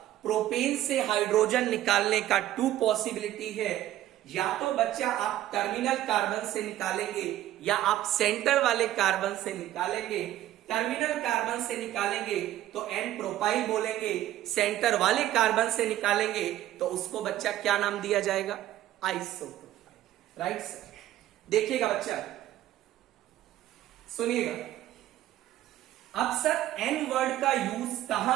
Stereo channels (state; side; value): quieter; left; 13.6 dB